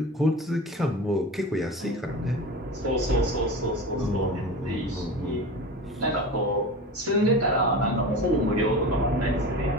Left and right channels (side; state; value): both; normal; correlation 0.31